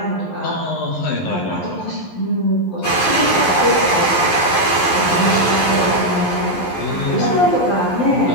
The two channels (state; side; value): late; right; 11 ms